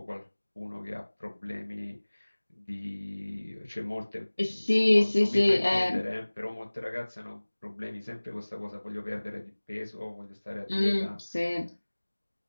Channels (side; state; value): both; inverted; correlation -1.00